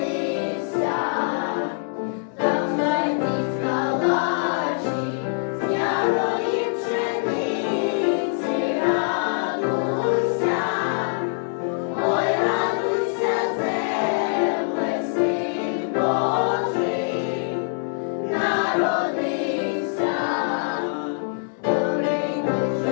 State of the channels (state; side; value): silent; right; 63 dB below the other